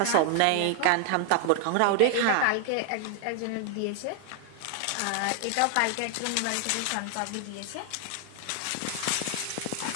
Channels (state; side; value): different; both; correlation 0.00